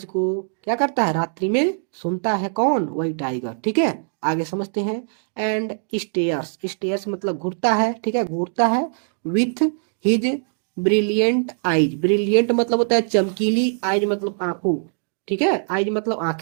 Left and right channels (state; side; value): silent; left; digital silence